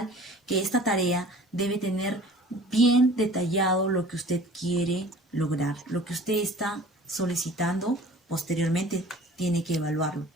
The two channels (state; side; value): normal; both; correlation 0.46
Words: que esta tarea debe tener bien detallado lo que usted quiere lograr, lo que usted está solicitando. Posteriormente tiene que evaluarlo.